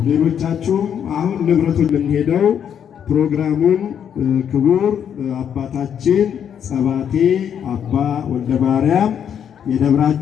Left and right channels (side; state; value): right; quieter; 8.6 dB